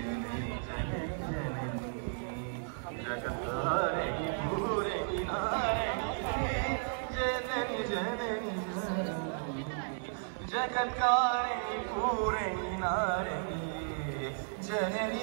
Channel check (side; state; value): left; silent; 55 dB below the other